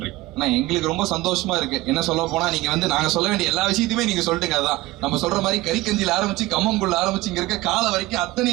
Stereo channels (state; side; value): quieter; left; 19.1 dB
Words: எங்களுக்கு ரொம்ப சந்தோஷமா இருக்கு. என்ன சொல்ல போனா நீங்க வந்து நாங்க சொல்ல வேண்டிய எல்லா விஷயத்தையுமே நீங்க சொல்லிட்டுங்க. அதான் நம்ம சொல்ற மாதிரி கறிக்கஞ்சில ஆரம்பிச்சு கம்மங்குள்ள ஆரம்பிச்சு இங்க இருக்க கால வரைக்கும்